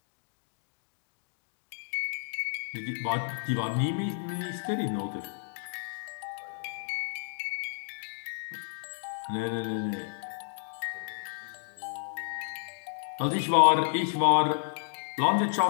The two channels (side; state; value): right; silent; digital silence